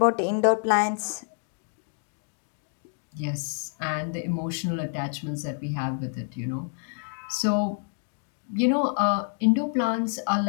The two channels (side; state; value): right; silent; 60 dB below the other